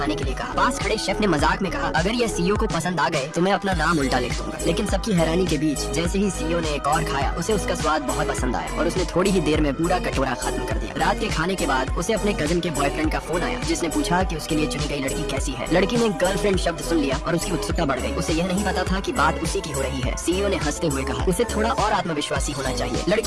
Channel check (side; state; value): both; identical; correlation 1.00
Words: के लिए कहा। पास खड़े शेफ ने मजाक में कहा, अगर यह सीईओ को पसंद आ गए तो मैं अपना नाम उल्टा लिख दूंगा। लेकिन सबकी हैरानी के बीच जैसे ही सीईओ ने एक और खाया, उसे उसका स्वाद बहुत पसंद आया और उसने थोड़ी ही देर में पूरा कटोरा खत्म कर दिया। रात के खाने के बाद उसे अपने कजिन के बॉयफ्रेंड का फोन आया, जिसने पूछा कि उसके लिए चुनी गई लड़की कैसी है। लड़की ने गर्लफ्रेंड शब्द सुन लिया और उसकी उत्सुकता बढ़ गई। उसे यह नहीं पता था कि बात उसी की हो रही है। सीईओ ने हंसते हुए कहा, उसे थोड़ा और आत्मविश्वासी होना चाहिए।